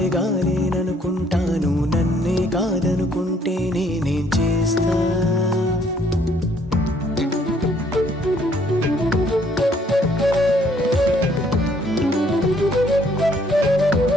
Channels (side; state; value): both; normal; correlation 0.65